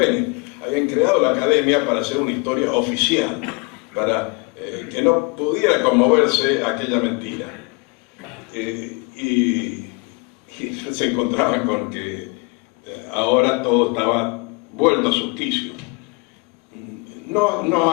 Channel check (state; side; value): quieter; right; 29.9 dB